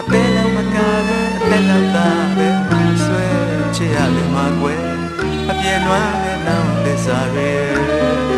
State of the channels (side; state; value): both; identical; correlation 1.00